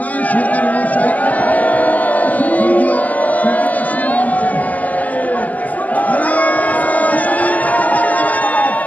সরকার মহাশয়, স্বর্গীয়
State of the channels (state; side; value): late; right; 0.077 ms